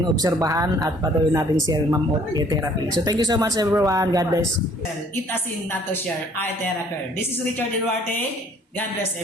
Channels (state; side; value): normal; both; correlation 0.58